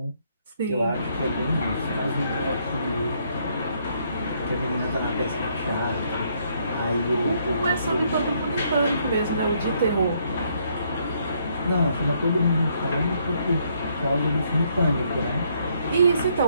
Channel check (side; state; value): both; inverted; correlation -0.71